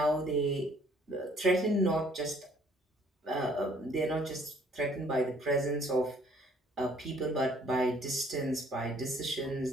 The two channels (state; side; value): normal; both; correlation 0.60